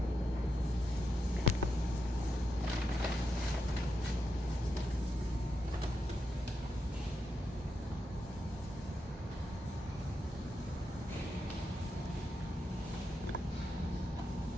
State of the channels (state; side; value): normal; both; correlation 0.85